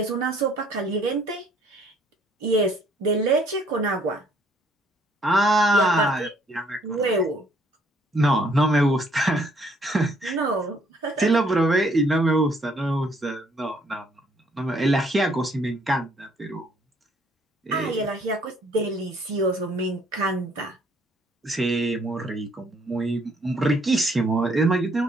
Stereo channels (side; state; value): both; normal; correlation 0.64